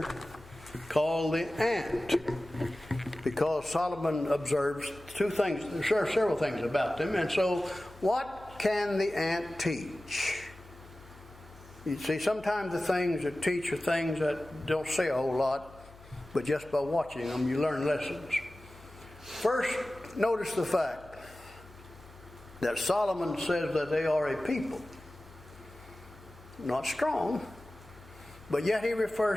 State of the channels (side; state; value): left; noise; hum, 21 dB below the sound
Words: called the ant, because Solomon observes 2 things. There are several things about them. And so what can the ant teach? You see, sometimes the things that teach are things that don't say a whole lot, but just by watching them you learn lessons. First, notice the fact that Solomon says that they are a people, not strong, but yet he